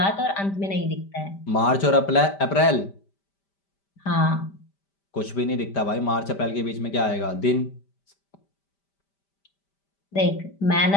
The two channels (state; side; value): late; right; 5.1 ms